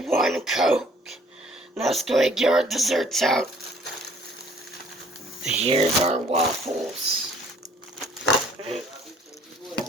1 Coke. Now let's go ahead and get our desserts out. Here's our waffles.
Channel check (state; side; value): normal; both; correlation 0.57